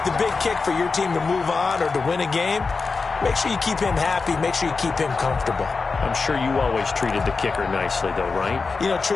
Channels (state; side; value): quieter; right; 4.4 dB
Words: the big kick for your team to move on or to win a game. Make sure you keep him happy. Make sure you keep him comfortable. I'm sure you always treated the kicker nicely, though, right? You know,